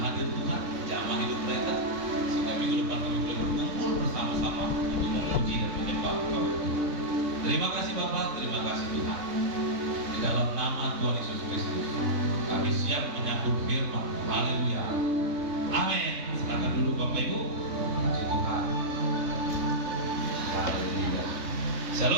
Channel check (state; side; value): late; left; 3.6 ms